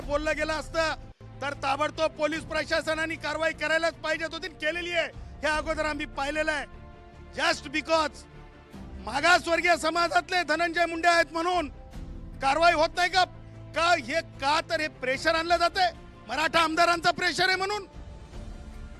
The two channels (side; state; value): both; identical; correlation 1.00